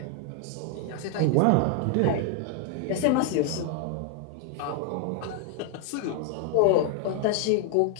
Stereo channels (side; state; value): both; different; correlation 0.00